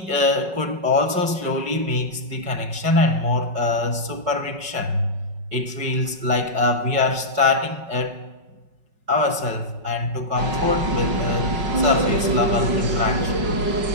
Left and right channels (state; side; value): late; left; 5.4 ms